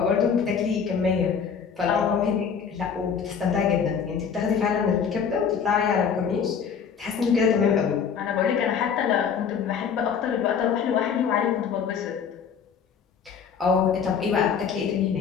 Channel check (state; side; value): quieter; right; 6.8 dB